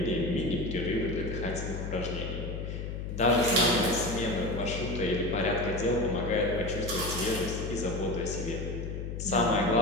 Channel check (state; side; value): noise; left; hum, 5 dB below the sound